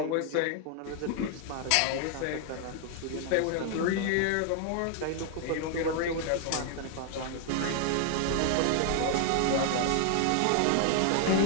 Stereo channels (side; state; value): both; different; correlation 0.00